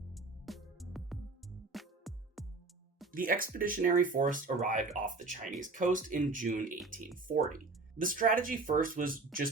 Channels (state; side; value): quieter; left; 3.6 dB